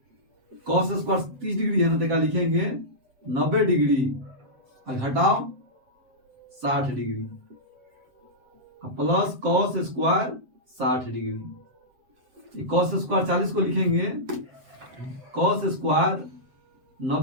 cos स्क्वायर 30 डिग्री है ना, देखा लिखेंगे 90 डिग्री घटाओ 60 degree plus cos square 60 degree. cos square 40 को लिखेंगे cos स्क्वायर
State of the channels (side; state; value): left; late; 7.7 ms